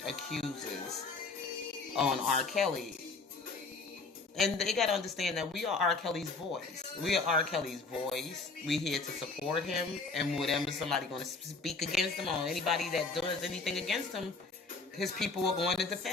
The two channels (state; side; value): quieter; right; 4.0 dB